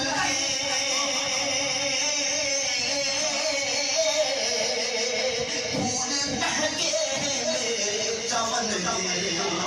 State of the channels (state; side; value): identical; both; correlation 1.00